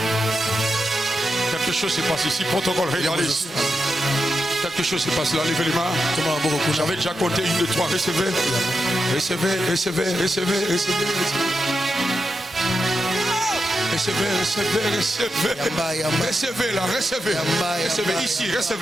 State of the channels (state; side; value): normal; both; correlation 0.87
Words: Quelque chose se passe ici. Protocole, regardez ici. Quelque chose se passe là. Levez les mains. J'avais déjà compté 1, 2, 3. Recevez. Recevez, recevez, recevez, recevez. Recevez, recevez, recevez. Recevez là, recevez. Recevez ici,